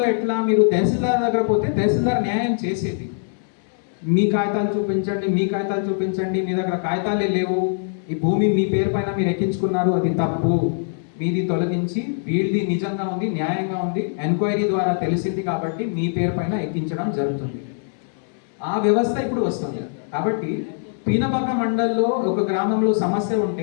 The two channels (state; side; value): silent; right; digital silence